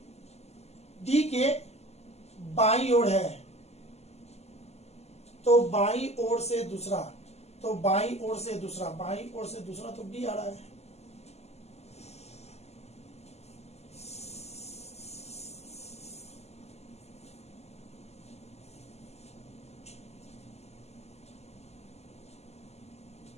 डी के बाईं ओर है। तो बाईं ओर से दूसरा, तो बाईं ओर से दूसरा, बाईं ओर से दूसरा तो बी आ रहा है।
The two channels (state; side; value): late; right; 0.31 ms